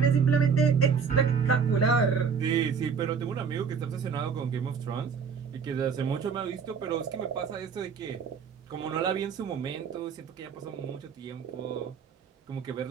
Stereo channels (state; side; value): quieter; left; 6.2 dB